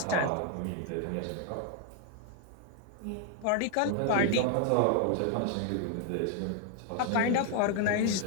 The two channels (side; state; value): both; different; correlation 0.00